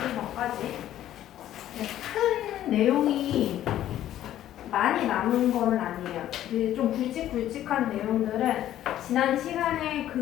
큰 내용이 많이 남은 거는 아니에요. 좀 굵직굵직한 내용들은 지난 시간에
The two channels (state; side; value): quieter; right; 12.4 dB